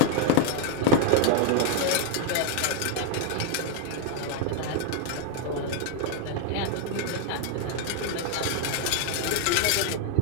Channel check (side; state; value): both; different; correlation 0.01